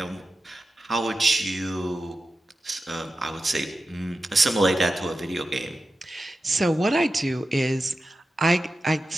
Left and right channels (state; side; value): normal; both; correlation 0.92